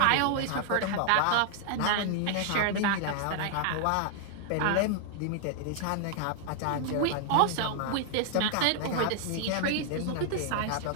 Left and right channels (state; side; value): different; both; correlation 0.00